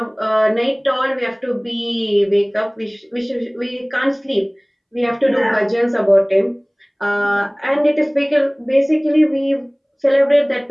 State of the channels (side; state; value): both; identical; correlation 1.00